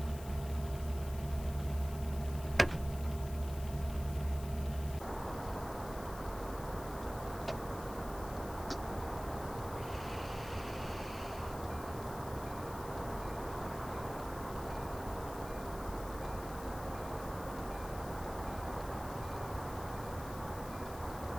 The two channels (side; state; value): left; noise; hiss, 15 dB below the sound